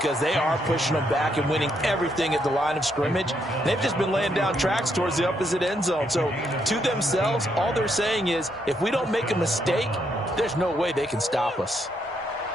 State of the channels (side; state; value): both; normal; correlation 0.76